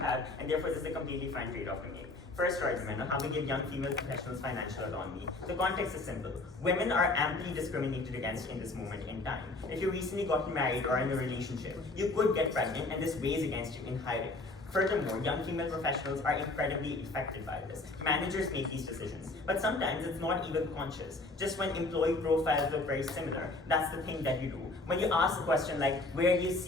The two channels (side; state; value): right; quieter; 3.1 dB